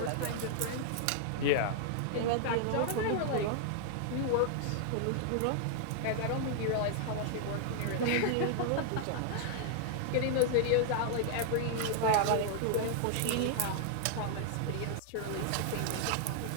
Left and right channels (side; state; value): both; different; correlation -0.01